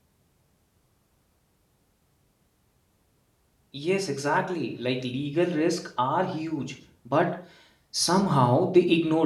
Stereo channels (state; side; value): identical; both; correlation 1.00